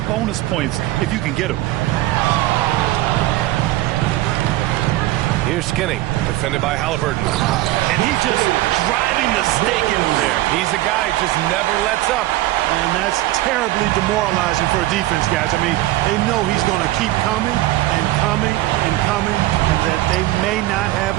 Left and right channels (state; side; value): quieter; left; 16.6 dB